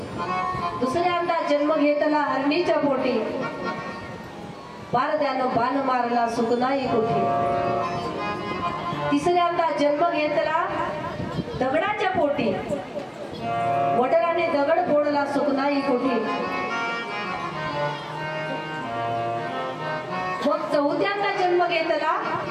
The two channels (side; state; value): both; identical; correlation 1.00